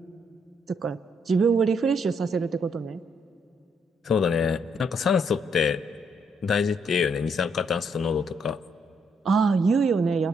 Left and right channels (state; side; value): normal; both; correlation 0.73